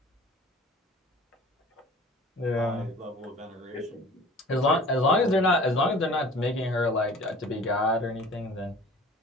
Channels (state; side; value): normal; both; correlation 0.45